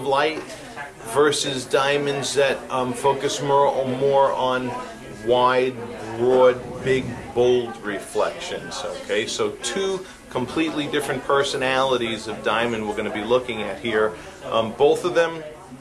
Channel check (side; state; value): both; identical; correlation 1.00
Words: light versus diamonds that focus more on wide, broad, big, bold reflections. Okay, so two completely different personalities of diamond we're going to be looking at here. Both of them